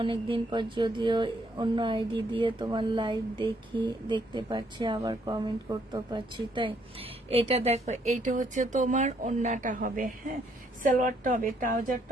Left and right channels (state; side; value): normal; both; correlation 0.70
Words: অনেকদিন পর, যদিও অন্য আইডি দিয়ে তোমার লাইভ দেখতে পাচ্ছি, আবার কমেন্ট করতে পারছি। তাই এটা দেখো, এইটা হচ্ছে তোমার ওন্নাটা হবে, হ্যাঁ সালোয়ারটা হবে,